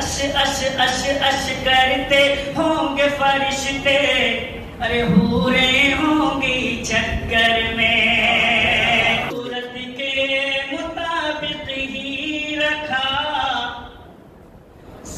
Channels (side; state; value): both; identical; correlation 1.00